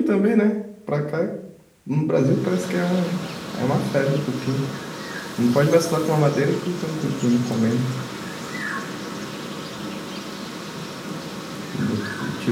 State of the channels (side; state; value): both; identical; correlation 1.00